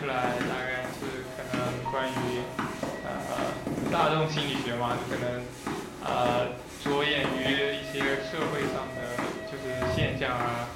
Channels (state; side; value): identical; both; correlation 1.00